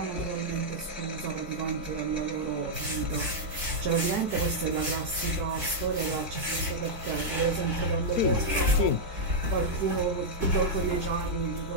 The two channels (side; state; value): left; late; 4.6 ms